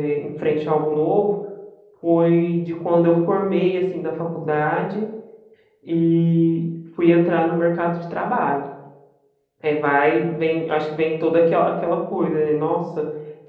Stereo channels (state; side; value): identical; both; correlation 1.00